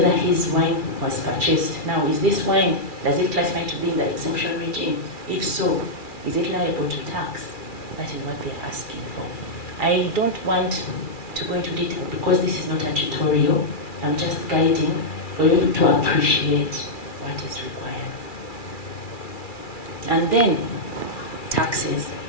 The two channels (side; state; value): right; late; 2.4 ms